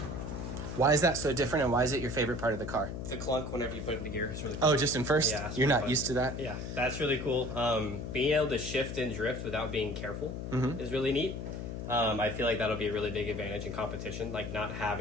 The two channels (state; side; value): noise; left; hum, 6 dB below the sound